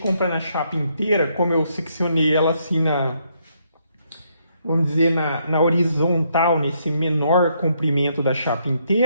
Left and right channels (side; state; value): both; inverted; correlation -0.74